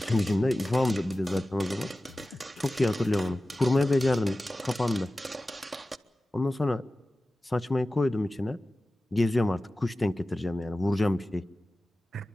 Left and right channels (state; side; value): normal; both; correlation 0.96